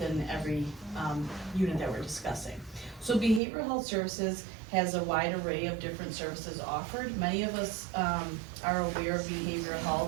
every unit that we're discussing. So behavioral health services has a wide array of different services offered. Many of us are aware of behavioral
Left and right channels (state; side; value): drops out; left; at 3.4 s